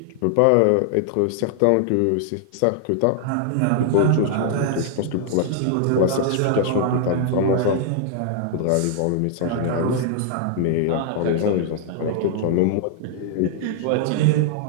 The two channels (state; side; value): different; both; correlation -0.01